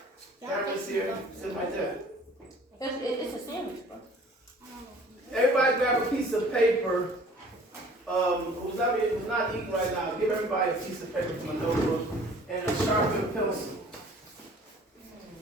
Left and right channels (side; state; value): both; normal; correlation 0.51